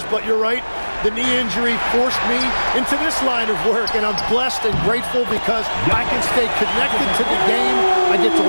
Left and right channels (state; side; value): inverted; both; correlation -1.00